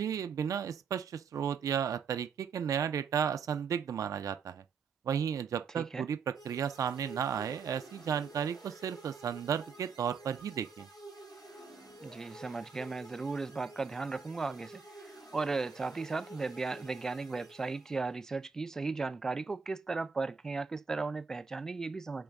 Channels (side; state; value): left; quieter; 5.9 dB